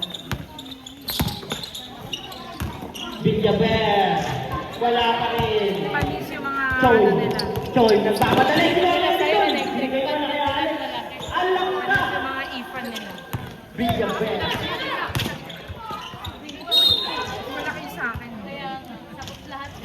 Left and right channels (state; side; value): identical; both; correlation 1.00